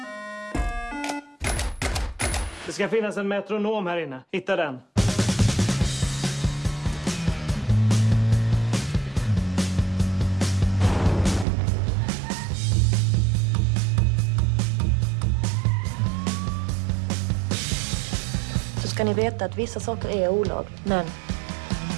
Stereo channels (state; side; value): drops out; left; at 11.5 s